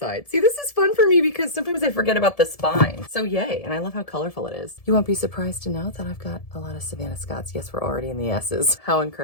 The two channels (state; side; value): late; right; 1.7 ms